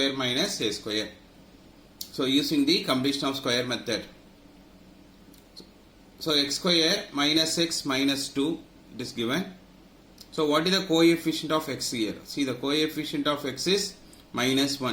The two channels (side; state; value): both; identical; correlation 1.00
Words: minus a square. So using the completion of square method. So x square minus x minus 2 it is given. So what is the coefficient of x here? See, the coefficient of x is minus